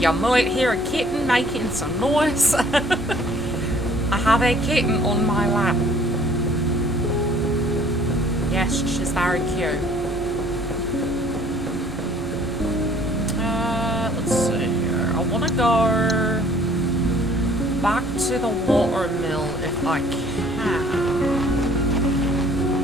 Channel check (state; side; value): normal; both; correlation 0.56